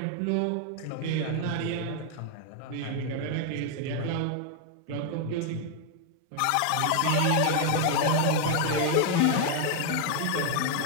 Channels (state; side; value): different; both; correlation 0.00